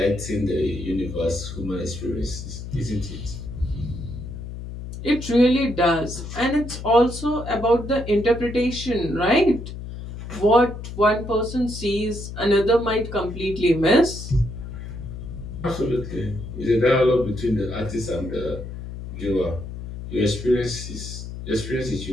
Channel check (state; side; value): noise; left; hum, 9 dB below the sound